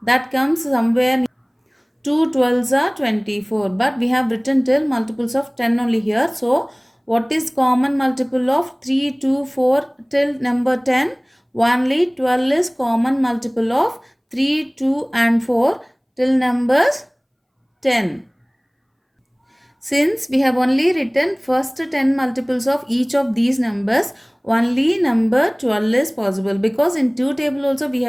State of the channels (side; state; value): both; identical; correlation 1.00